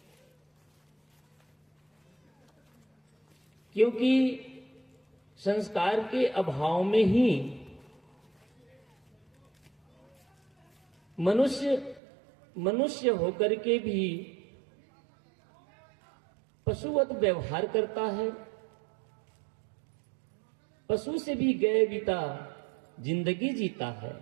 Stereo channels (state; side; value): drops out; left; at 12.0 s